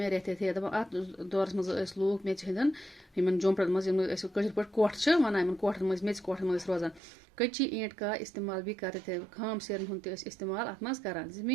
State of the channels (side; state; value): left; drops out; at 7.0 s